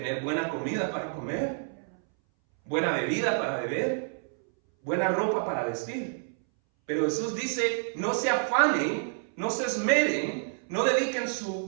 buena comida para comer, buena bebida para beber, buena ropa para vestir. Pero Jesús dice, no se afanen, no se esmeren, no dediquen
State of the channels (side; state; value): left; silent; 59 dB below the other